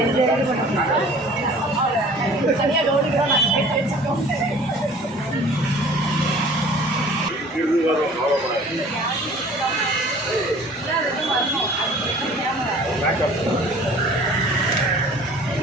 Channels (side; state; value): both; normal; correlation 0.49